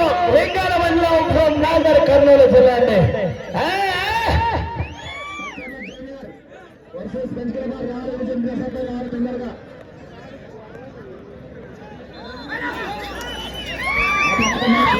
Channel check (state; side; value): identical; both; correlation 1.00